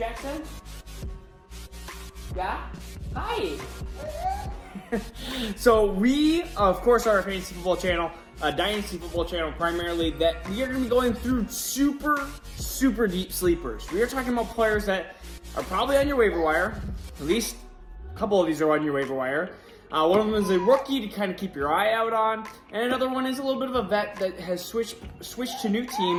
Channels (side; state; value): both; identical; correlation 1.00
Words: Yeah? Hi! So we, of course, are a fantasy football channel, a dynasty football channel primarily, that we are going to be going through super deep sleepers. We are talking about players that are probably on your waiver wire. At least a couple of these are on your waiver wire. One of them is a rookie to kind of keep your eye out on, and another one is a little bit of a vet that has switched to new